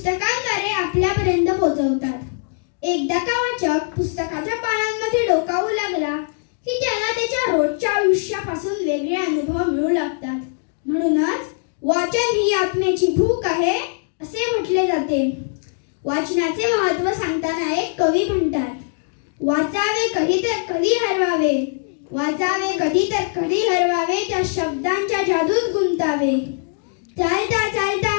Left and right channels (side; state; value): right; silent; 64 dB below the other